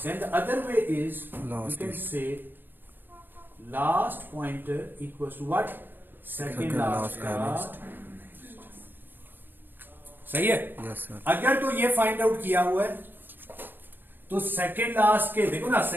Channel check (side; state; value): left; late; 0.095 ms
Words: then the other way is you can say last pointer equals to what, second last का सही है। Yes sir. अगर तो ये फाइंड आउट किया हुआ है तो सेकंड लास्ट के, देखो ना